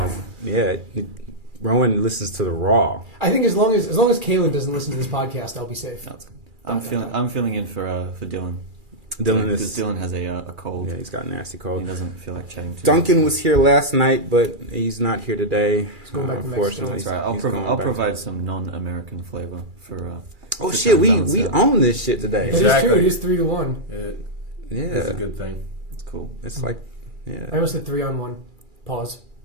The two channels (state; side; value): late; left; 2.4 ms